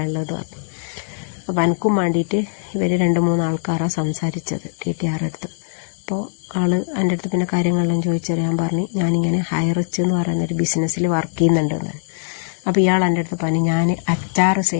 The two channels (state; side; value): silent; right; digital silence